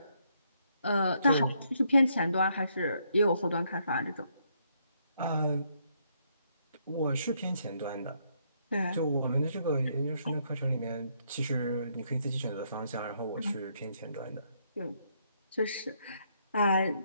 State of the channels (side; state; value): both; inverted; correlation -0.73